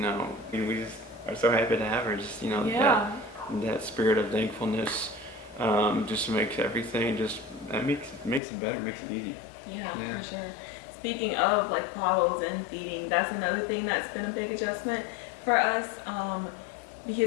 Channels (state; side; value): drops out; right; at 8.4 s